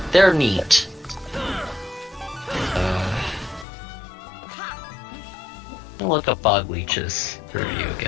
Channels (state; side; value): drops out; right; at 3.7 s